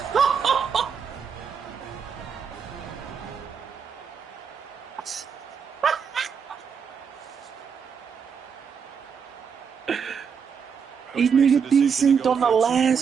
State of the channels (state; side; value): quieter; left; 6.7 dB